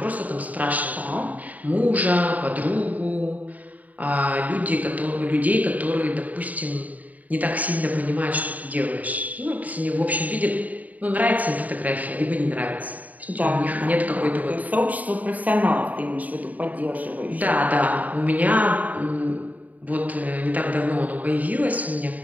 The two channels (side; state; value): left; late; 0.075 ms